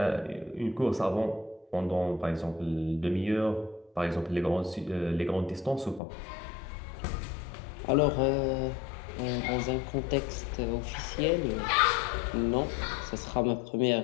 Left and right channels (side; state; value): right; drops out; at 6.0 s